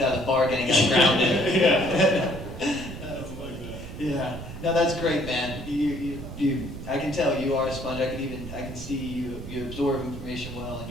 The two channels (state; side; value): noise; right; rumble, 10 dB below the sound